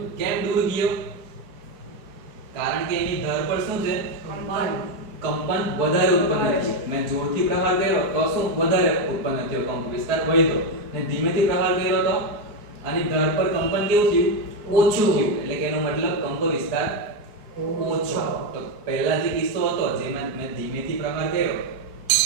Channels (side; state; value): left; late; 4.6 ms